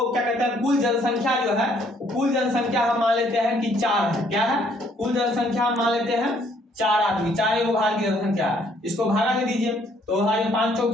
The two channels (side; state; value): both; normal; correlation 0.65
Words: क्या कहते हैं, कुल जनसंख्या जो है, कुल जनसंख्या हम मान लेते हैं कि 4 है। क्या है? कुल जनसंख्या हम मान लेते हैं 4 आदमी, 4 वो भारत की जनसंख्या है। इसको भागा दे दीजिए तो 5